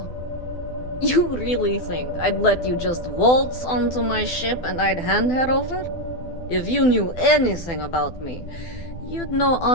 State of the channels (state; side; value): late; right; 12 ms